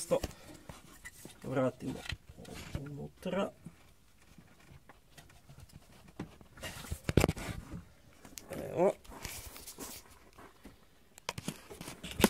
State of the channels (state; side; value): identical; both; correlation 1.00